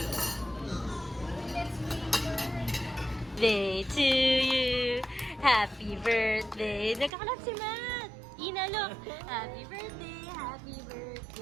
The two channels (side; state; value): left; drops out; at 7.1 s